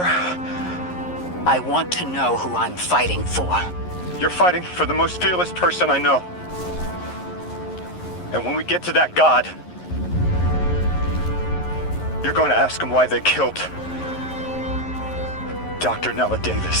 I want to know who I'm fighting for. You're fighting for the most fearless person I know. And when we get to that god, you're going to ask him why they killed Dr. Nella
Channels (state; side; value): late; right; 11 ms